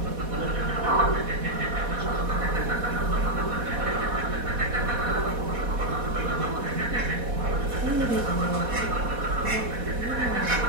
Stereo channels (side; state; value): left; late; 4.1 ms